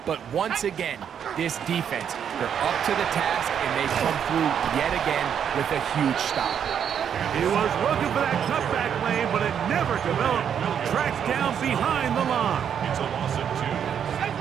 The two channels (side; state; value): left; quieter; 8.3 dB